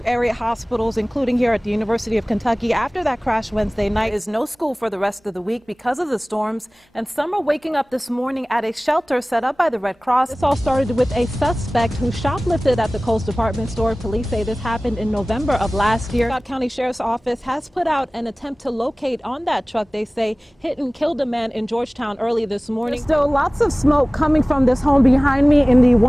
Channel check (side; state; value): both; normal; correlation 0.98